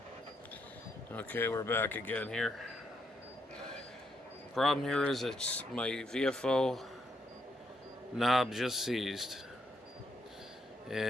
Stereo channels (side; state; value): both; normal; correlation 0.77